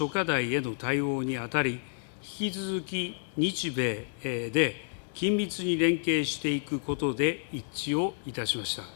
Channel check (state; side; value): silent; right; digital silence